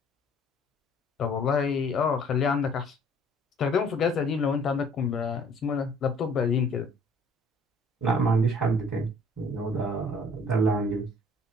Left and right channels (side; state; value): both; normal; correlation 0.56